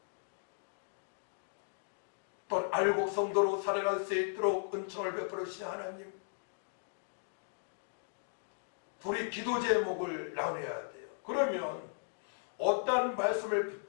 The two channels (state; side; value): silent; right; digital silence